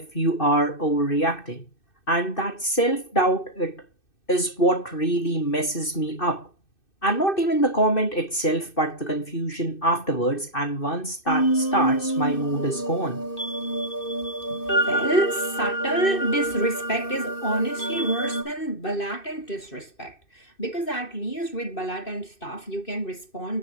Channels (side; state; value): right; late; 2.6 ms